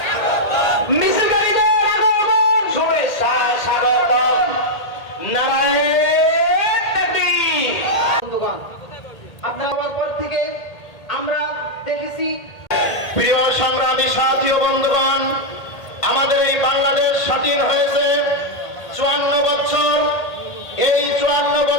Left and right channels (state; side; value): late; right; 1.8 ms